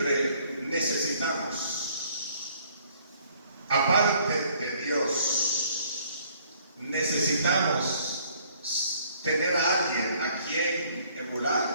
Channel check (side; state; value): both; inverted; correlation -0.61